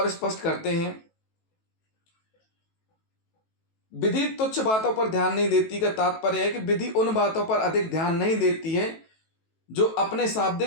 स्पष्ट करते हैं। विधि तुच्छ बातों पर ध्यान नहीं देती का तात्पर्य है कि विधि उन बातों पर अधिक ध्यान नहीं देती है जो अपने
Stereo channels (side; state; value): right; late; 18 ms